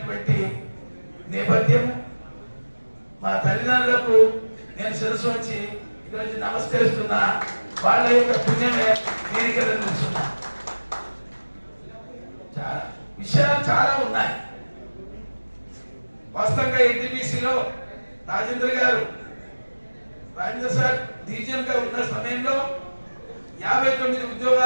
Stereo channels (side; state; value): both; inverted; correlation -1.00